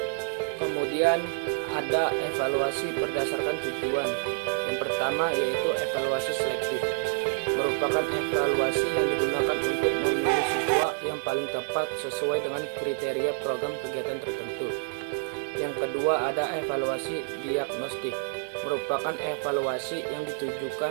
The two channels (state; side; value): silent; left; 57 dB below the other